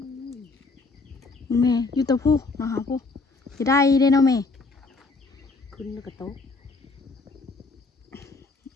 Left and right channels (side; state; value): right; quieter; 3.8 dB